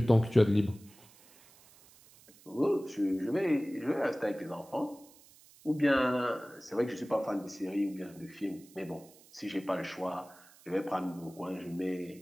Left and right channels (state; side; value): noise; right; hiss, 25 dB below the sound